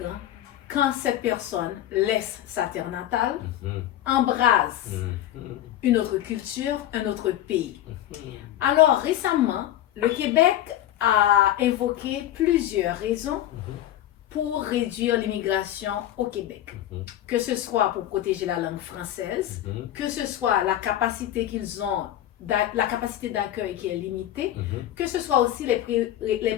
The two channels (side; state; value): right; quieter; 12.5 dB